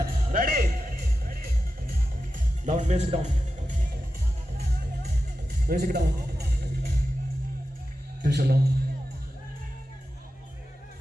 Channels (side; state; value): both; normal; correlation 0.91